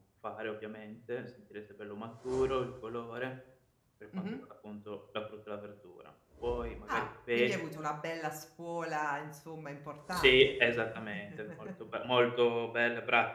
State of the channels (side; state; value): both; identical; correlation 1.00